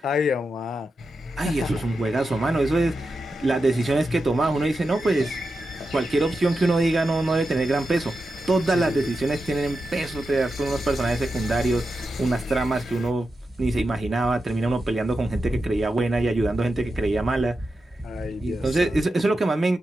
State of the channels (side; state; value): both; normal; correlation 0.89